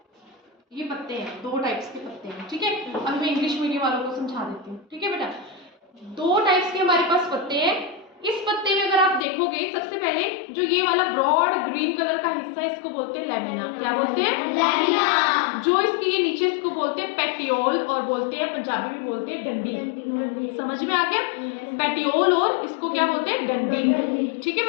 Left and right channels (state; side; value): drops out; right; at 9.2 s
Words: ये पत्ते हैं, 2 टाइप्स के पत्ते हैं, ठीक है। अब मैं इंग्लिश मीडियम वालों को समझा देती हूँ, ठीक है बेटा। 2 टाइप्स के हमारे पास पत्ते हैं। इस पत्ते में अगर आप देखोगे, सबसे पहले जो ये वाला ब्रॉड ग्रीन कलर का हिस्सा है, इसको बोलते हैं लैमिना। क्या बोलते हैं? लैमिना। जो इसके ये नीचे, इसको बोलते हैं पेटियोल, और बोलते हैं पंजाबी में बोलते हैं डंडी। समझ में आ गया? पेटियोल और इसको क्या बोलते हैं? डंडी, ठीक है